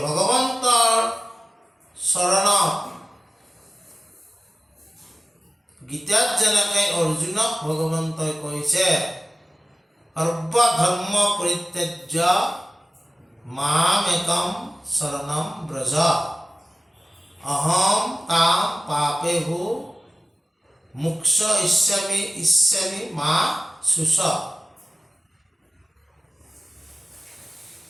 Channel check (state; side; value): normal; both; correlation 0.97